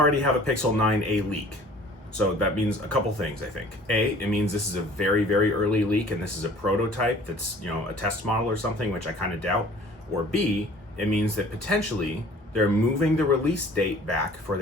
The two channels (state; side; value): normal; both; correlation 0.50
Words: have a Pixel 9a leak. So that means a couple things, I think. A, it means this is a very, very early leak, and this is a prototype that's, a test model or something, which I kind of doubt. Or B, it means that potentially they're moving the release date back for